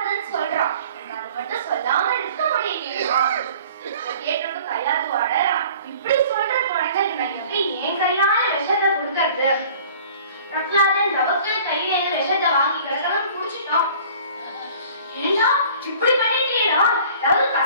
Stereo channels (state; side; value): inverted; both; correlation -0.49